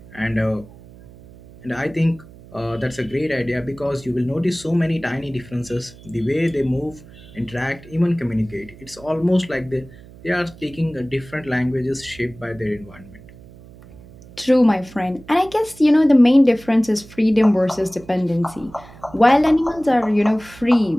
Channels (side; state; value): right; noise; hum, 21 dB below the sound